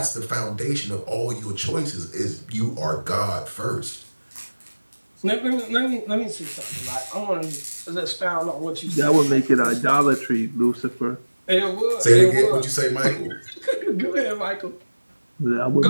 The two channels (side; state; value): both; inverted; correlation -1.00